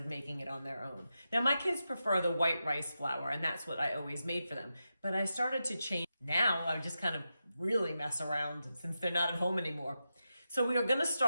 making it on their own. Now my kids prefer the white rice flour, and that's what I always made for them. But I started to change. Now I just kind of really mess around since they're not at home anymore. So we are gonna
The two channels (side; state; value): both; inverted; correlation -0.89